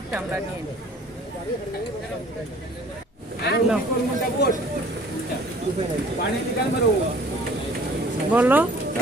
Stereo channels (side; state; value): both; normal; correlation 0.51